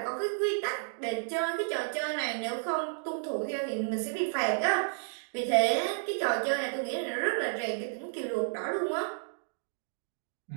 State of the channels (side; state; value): left; silent; digital silence